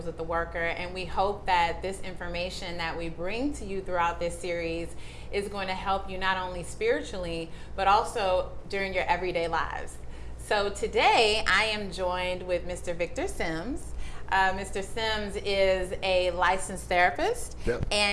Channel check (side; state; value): both; identical; correlation 1.00